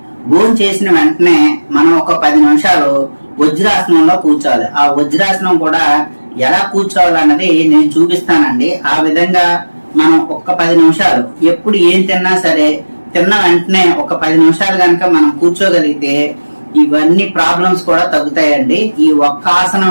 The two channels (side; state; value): both; inverted; correlation -1.00